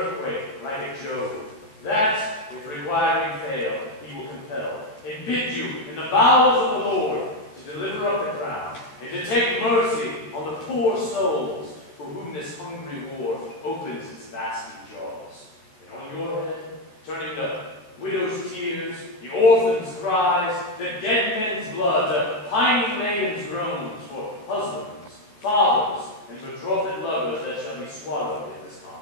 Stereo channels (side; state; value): right; late; 14 ms